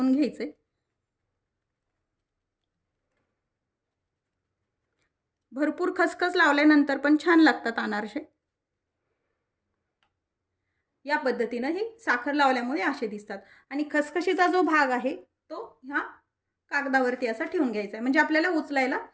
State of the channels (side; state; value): both; identical; correlation 1.00